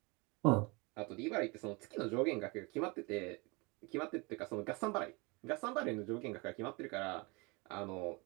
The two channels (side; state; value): left; quieter; 27.7 dB